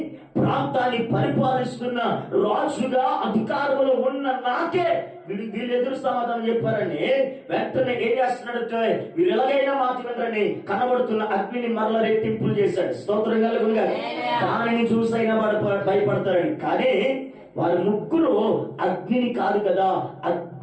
ప్రాంతాన్ని పరిపాలిస్తున్న రాజుగా అధికారంలో ఉన్న నాకే వీళ్ళు ఎదురు సమాధానం చెప్పారని వెంటనే ఏం చేస్తున్నాడంటే, వీరు ఎలాగైనా మాట వినరని కనబడుతున్న అగ్నిని మరల రెట్టింపులు చేశాడు. స్తోత్రం కలుగునుగా. దానిని చూసైనా భయపడతారని. కానీ వారి ముగ్గురు అగ్నిని కాదు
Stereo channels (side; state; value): both; identical; correlation 1.00